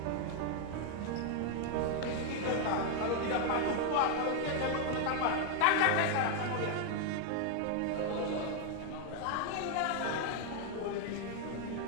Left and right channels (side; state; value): both; different; correlation 0.00